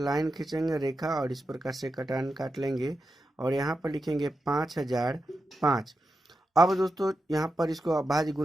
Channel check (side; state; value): both; normal; correlation 0.89